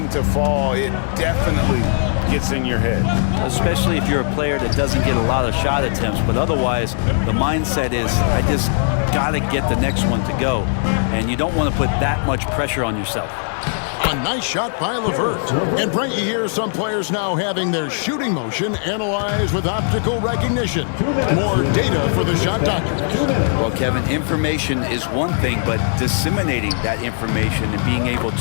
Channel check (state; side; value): silent; right; digital silence